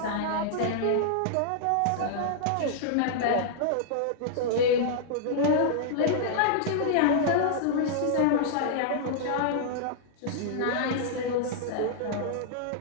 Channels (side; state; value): both; different; correlation -0.02